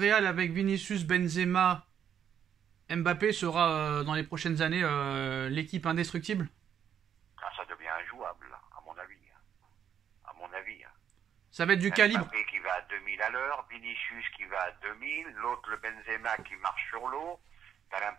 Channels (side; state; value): left; quieter; 8.8 dB